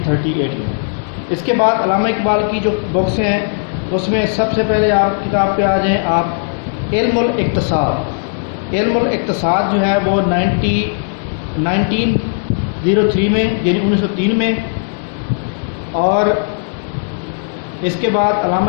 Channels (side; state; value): right; silent; digital silence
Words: میں. اس کے بعد علامہ اقبال کی جو بکس ہیں اس میں سب سے پہلے آپ کتاب پہ آ جائیں آپ علم الاقتصاد. علم الاقتصاد جو ہے وہ 1903 میں یعنی 1903 میں. اور اس کے بعد